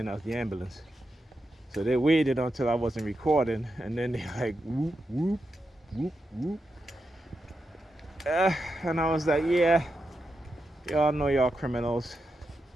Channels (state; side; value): normal; both; correlation 0.87